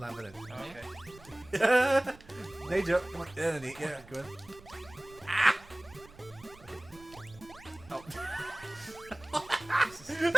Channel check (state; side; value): noise; right; rumble, 22 dB below the sound